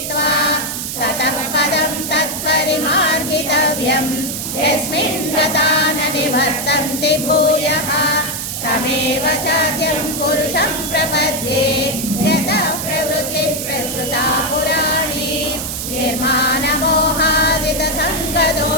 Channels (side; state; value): right; noise; hiss, 5 dB below the sound